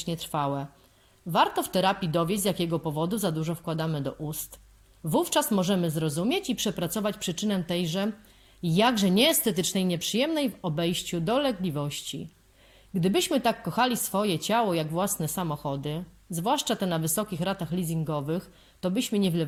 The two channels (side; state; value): both; identical; correlation 1.00